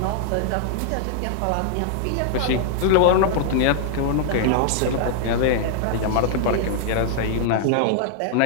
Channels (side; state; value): both; different; correlation -0.01